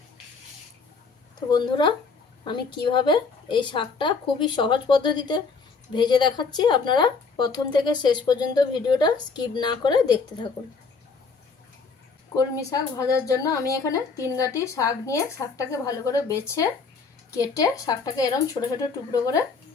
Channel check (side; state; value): right; quieter; 4.7 dB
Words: তো বন্ধুরা, আমি কিভাবে এই শাকটা খুবই সহজ পদ্ধতিতে ভেজে দেখাচ্ছি, আপনারা প্রথম থেকে শেষ পর্যন্ত ভিডিওটা স্কিপ না করে দেখতে থাকুন। কলমি শাক ভাজার জন্য আমি এখানে 3 গাঁটি শাক নিয়ে শাকটাকে ভালো করে বেছে কেটে শাকটাকে এরকম ছোট ছোট টুকরো করে